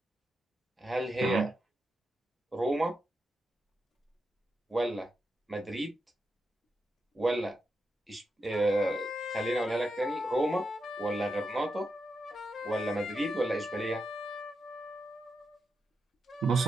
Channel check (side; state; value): both; normal; correlation 0.86